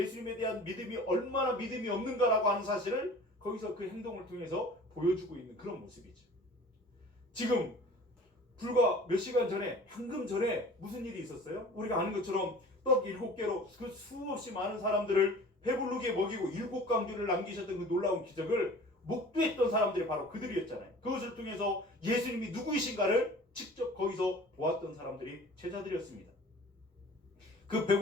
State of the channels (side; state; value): both; normal; correlation 0.44